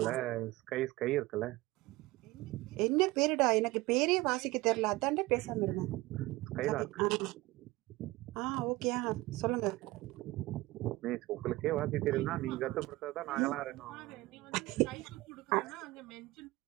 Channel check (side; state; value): left; quieter; 19.8 dB